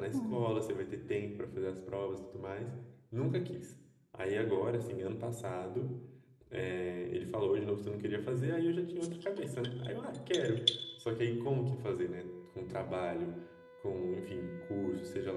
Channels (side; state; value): both; identical; correlation 1.00